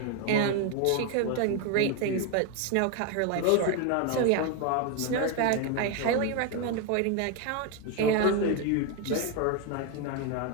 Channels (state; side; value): different; both; correlation 0.01